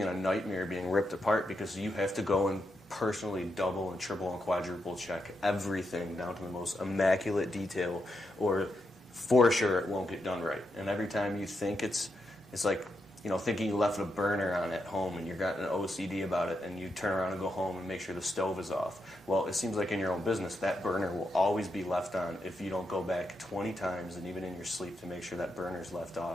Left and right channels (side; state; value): both; normal; correlation 0.84